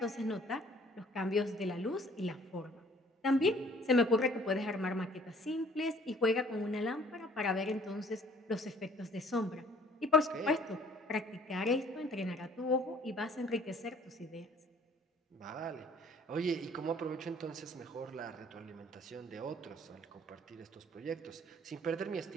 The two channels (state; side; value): normal; both; correlation 0.57